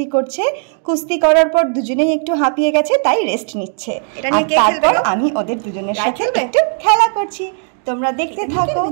করছে। কুস্তি করার পর দুজনেই একটু হাঁপিয়ে গেছে, তাই রেস্ট নিচ্ছে। তারপর আমি ওদের দুজনের সাথে একটু খেলা করছি। তোমরা দেখতে থাকো।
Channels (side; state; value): left; silent; 56 dB below the other